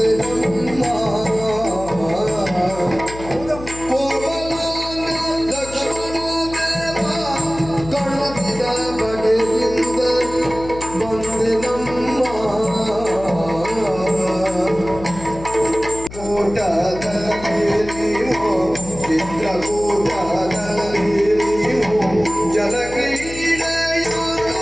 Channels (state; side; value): noise; left; hum, 13 dB below the sound